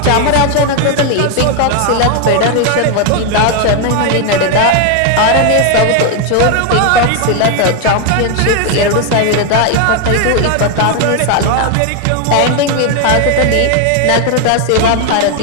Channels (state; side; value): different; both; correlation 0.01